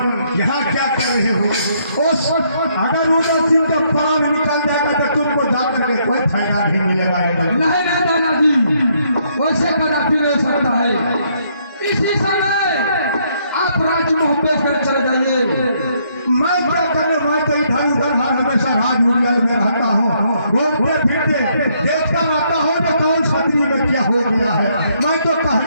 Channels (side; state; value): both; inverted; correlation -0.71